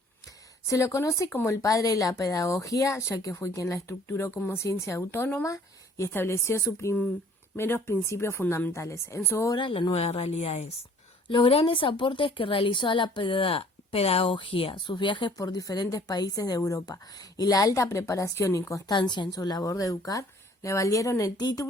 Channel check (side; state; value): both; normal; correlation 0.55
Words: Se lo conoce como el padre de la pedagogía, ya que fue quien la estructuró como ciencia autónoma y estableció sus primeros principios fundamentales. En su obra, La Nueva Realidad es. Los grandes aportes que realizó a la pedagogía, sus viajes por diferentes países de Europa y la alta preparación y constancia en su labor de educar le valieron el